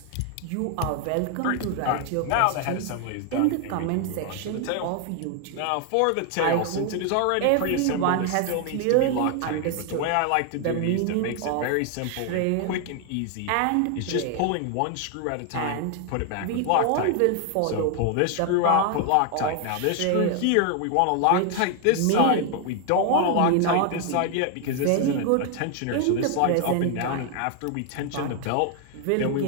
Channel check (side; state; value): both; different; correlation 0.00